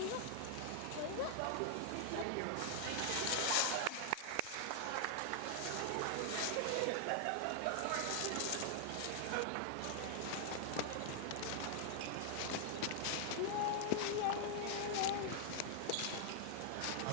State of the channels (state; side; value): different; both; correlation 0.00